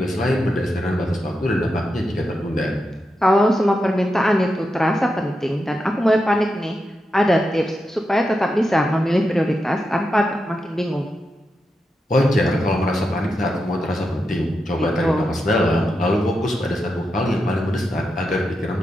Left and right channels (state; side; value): normal; both; correlation 0.87